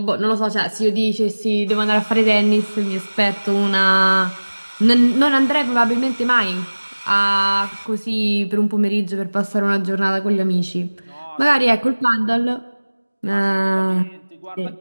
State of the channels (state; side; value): inverted; both; correlation -1.00